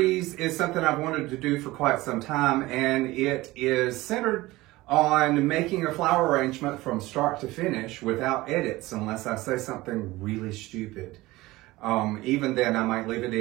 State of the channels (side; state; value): left; quieter; 19.2 dB